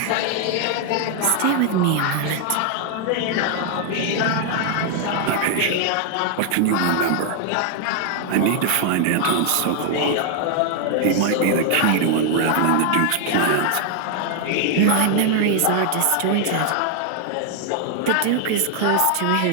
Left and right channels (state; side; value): different; both; correlation 0.00